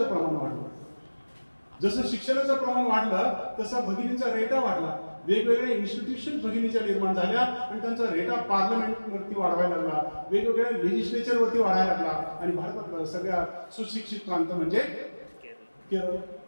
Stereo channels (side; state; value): both; inverted; correlation -1.00